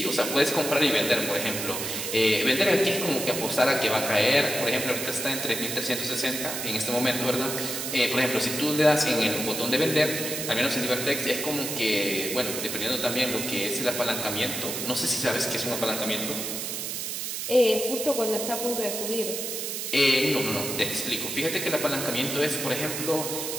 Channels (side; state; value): right; noise; hiss, 4 dB below the sound